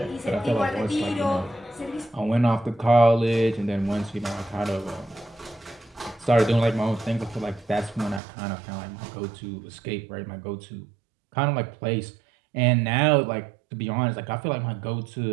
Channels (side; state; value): left; drops out; at 8.2 s